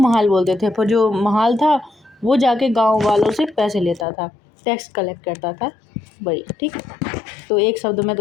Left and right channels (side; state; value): right; drops out; at 4.0 s